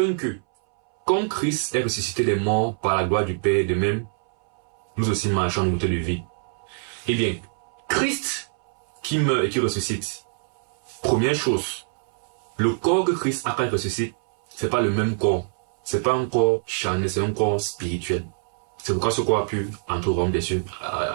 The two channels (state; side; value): silent; left; 62 dB below the other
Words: que, comme Christ est ressuscité des morts par la gloire du Père, de même, nous aussi marchons en nouveauté de vie. Eh bien, Christ qui meurt et qui ressuscite, première chose, le corps que Christ a quand il ressuscite, c'est pas le même corps. C'est pas un corps charnel, c'est un corps spirituel. C'est pourquoi ce corps a pu entrer au royaume des cieux,